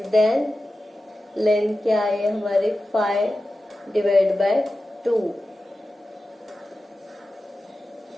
देन, लेंथ क्या है हमारे 5/2,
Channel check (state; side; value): normal; both; correlation 0.93